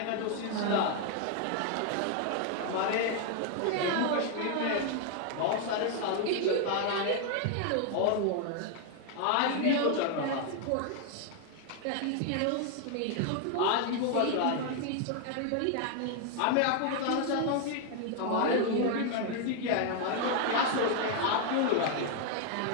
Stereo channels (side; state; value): both; different; correlation 0.00